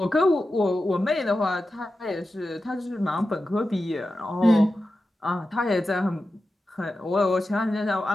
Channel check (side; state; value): both; normal; correlation 0.92